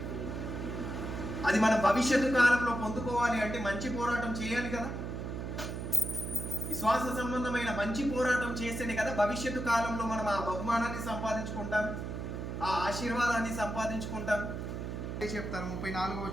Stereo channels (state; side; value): noise; right; hum, 5 dB below the sound